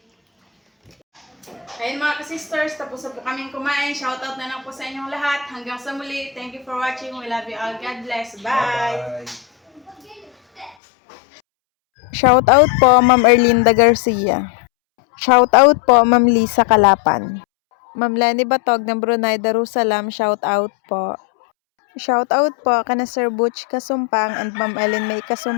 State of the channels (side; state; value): right; drops out; at 10.8 s